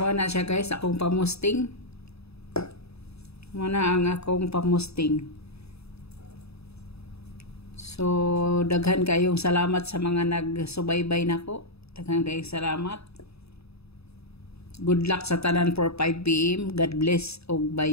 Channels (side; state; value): right; late; 0.79 ms